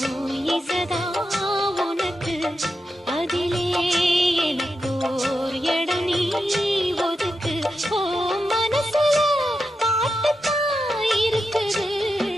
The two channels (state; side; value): normal; both; correlation 0.88